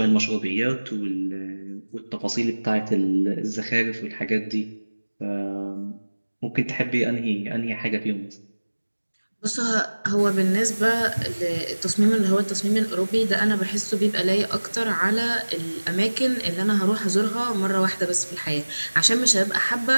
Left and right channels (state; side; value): inverted; both; correlation -1.00